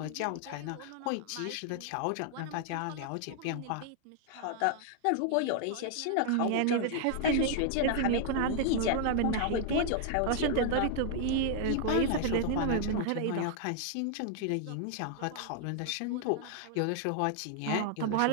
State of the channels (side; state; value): both; different; correlation 0.00